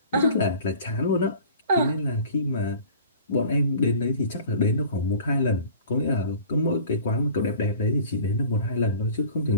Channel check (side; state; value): both; inverted; correlation -0.44